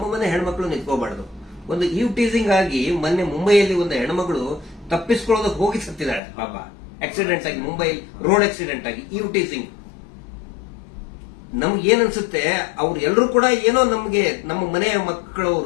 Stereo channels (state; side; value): drops out; right; at 6.2 s